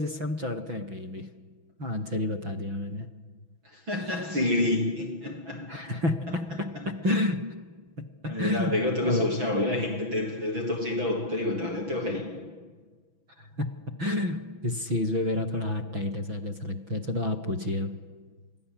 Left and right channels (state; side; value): late; left; 6.1 ms